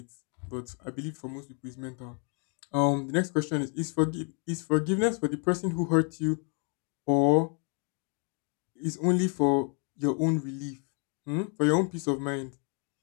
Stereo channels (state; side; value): quieter; right; 38.7 dB